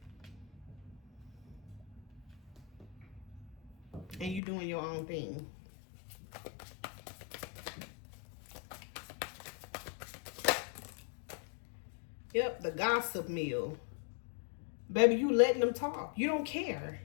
And you doing your own thing. Yep, the gossip mill. Baby, you letting them talk. You don't care.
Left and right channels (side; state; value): right; drops out; at 4.4 s